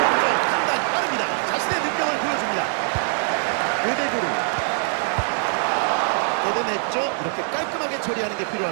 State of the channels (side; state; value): left; silent; 57 dB below the other